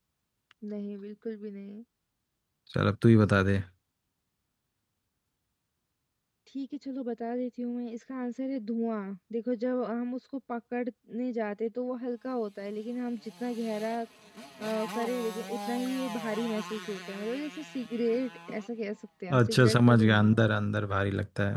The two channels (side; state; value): both; identical; correlation 1.00